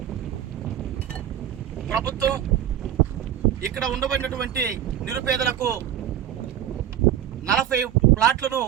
ప్రభుత్వం ఇక్కడ ఉండబడినటువంటి నిరుపేదలకు 40 ప్లాట్లను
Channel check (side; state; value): left; quieter; 10.8 dB